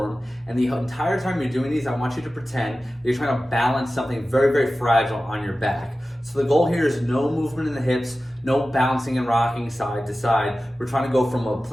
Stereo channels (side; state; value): both; normal; correlation 0.95